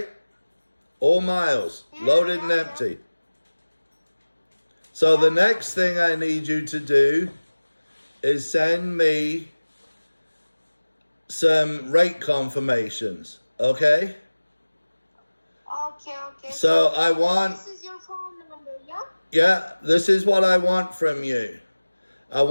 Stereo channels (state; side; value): inverted; both; correlation -1.00